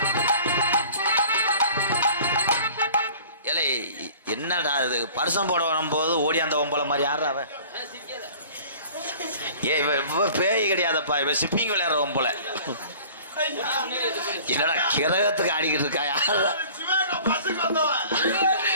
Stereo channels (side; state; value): both; inverted; correlation -0.46